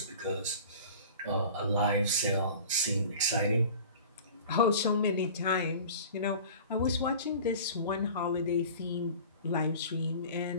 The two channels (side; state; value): both; inverted; correlation -0.41